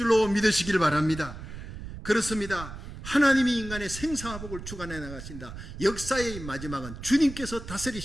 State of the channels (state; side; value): noise; right; rumble, 11 dB below the sound